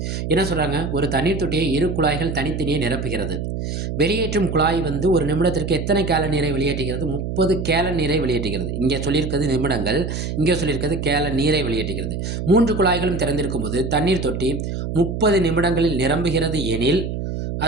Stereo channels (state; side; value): noise; right; hum, 4 dB below the sound